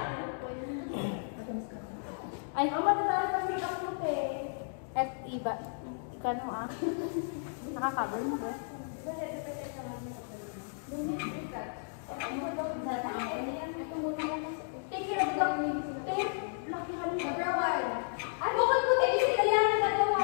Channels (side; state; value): right; silent; digital silence